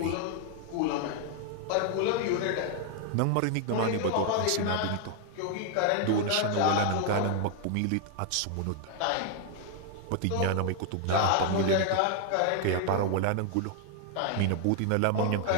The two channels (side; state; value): both; different; correlation 0.00